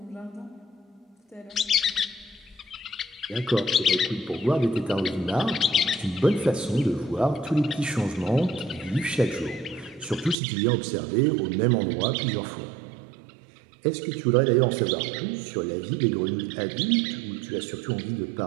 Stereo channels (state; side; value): drops out; left; at 10.4 s